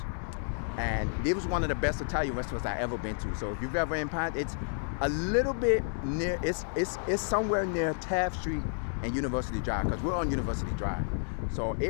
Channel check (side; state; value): right; silent; digital silence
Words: And it was one of the best Italian restaurants I ever been to. So if you've ever in Pine, it's a little bit near, it's somewhere near Taft Street and University Drive, because we're on University Drive. So